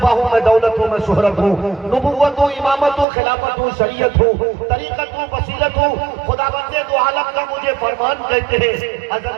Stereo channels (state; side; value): drops out; left; at 3.1 s